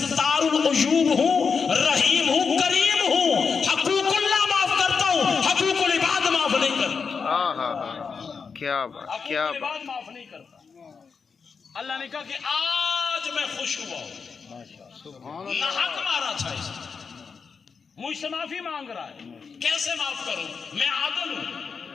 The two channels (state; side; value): quieter; right; 5.5 dB